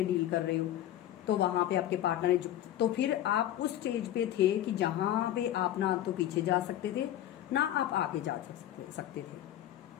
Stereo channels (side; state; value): right; quieter; 12.4 dB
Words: डील कर रहे हो, तो वहां पे आपके पार्टनर ने तो फिर आप उस स्टेज पे थे कि जहां पे आप ना तो पीछे जा सकते थे ना आप आगे जा सकते थे,